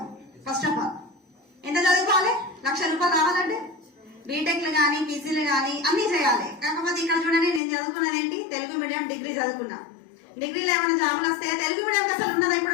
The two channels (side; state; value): right; drops out; at 7.6 s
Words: ఫస్ట్ ఆఫ్ ఆల్ ఎంత చదువుకోవాలి? ₹1,00,000 రావాలంటే బీటెక్లు కానీ పీజీలు కానీ అన్ని చేయాలి. కాకపోతే ఇక్కడ చూడండి, నేను చదువుకున్నది ఏంటి? తెలుగు మీడియం డిగ్రీ చదువుకున్నా. డిగ్రీలో ఏమైనా జాబులు వస్తే తెలుగు మీడియం అసలు ఉన్నదా?